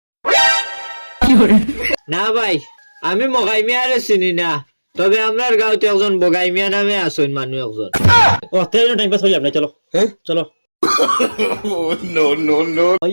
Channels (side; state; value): both; inverted; correlation -1.00